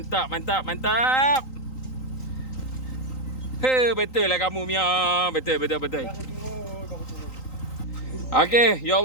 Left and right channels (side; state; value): right; late; 3.9 ms